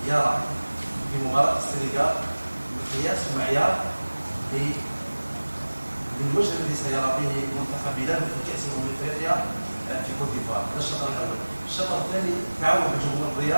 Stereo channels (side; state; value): both; inverted; correlation -1.00